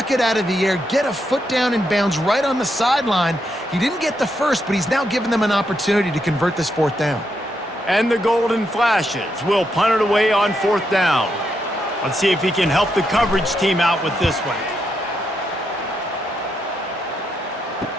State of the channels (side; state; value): both; normal; correlation 0.81